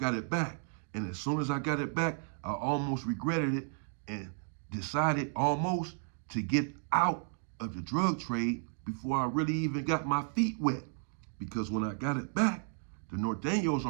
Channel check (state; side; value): silent; left; 56 dB below the other